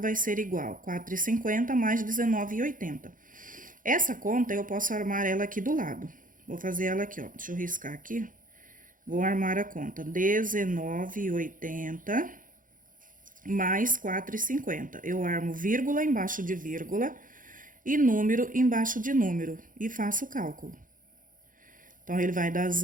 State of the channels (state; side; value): late; left; 0.39 ms